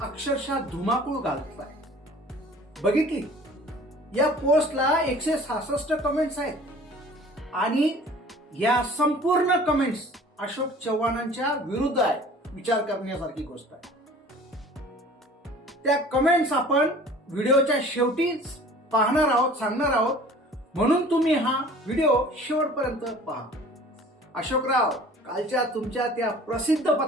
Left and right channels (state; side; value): normal; both; correlation 0.47